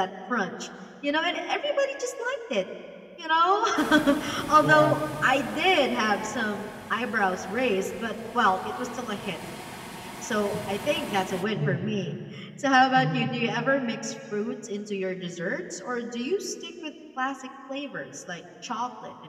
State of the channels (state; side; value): identical; both; correlation 1.00